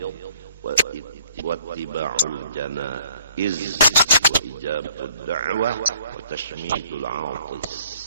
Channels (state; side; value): inverted; both; correlation -0.59